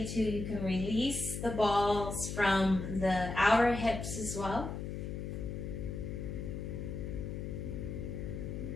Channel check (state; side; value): noise; left; hum, 5 dB below the sound